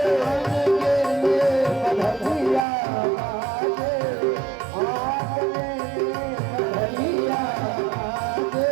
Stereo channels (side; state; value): left; drops out; at 2.7 s